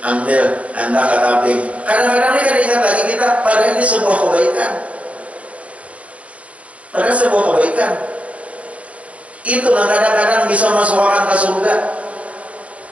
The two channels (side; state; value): left; late; 0.065 ms